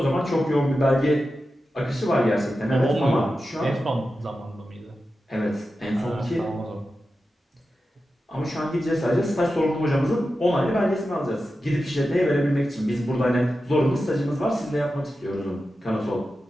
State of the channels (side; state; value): both; normal; correlation 0.91